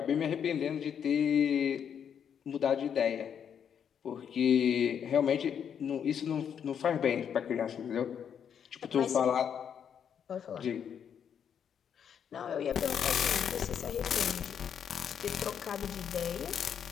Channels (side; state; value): right; quieter; 8.1 dB